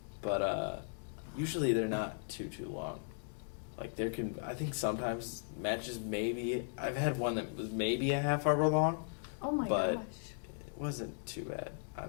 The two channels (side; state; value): right; silent; digital silence